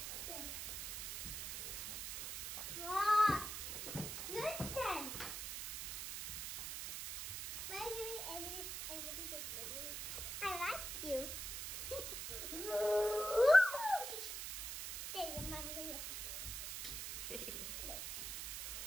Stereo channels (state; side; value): noise; right; hiss, 5 dB below the sound